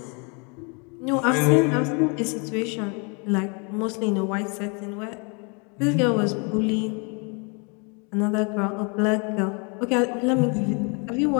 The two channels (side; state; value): right; quieter; 33.9 dB